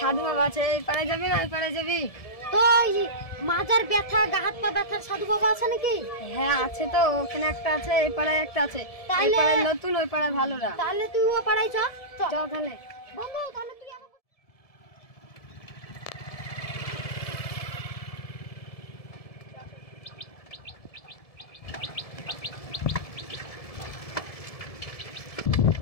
বাবা আছে, এই পাড়ায় যাবি না ওই পাড়ায় যাবি? তো মাজার ব্যথা গা হাত পা ব্যথার সাধু বাবা আছে নাকি? হ্যাঁ আছে তো, ওখানে একটা আছে, এই পাড়ায় একটা আছে। এই তাহলে পাড়ায় নতুন, ওই পাড়ায় ভালো না। তাহলে তুই ও পাড়ায় চল। চল তাহলে। বন্ধু তাহলে তুই আমাকে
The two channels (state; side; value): late; right; 1.7 ms